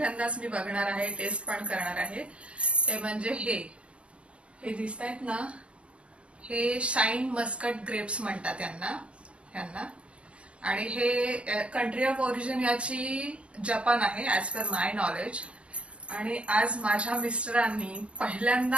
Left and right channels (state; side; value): late; left; 0.060 ms